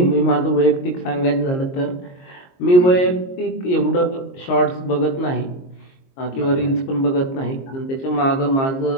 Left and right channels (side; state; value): right; late; 22 ms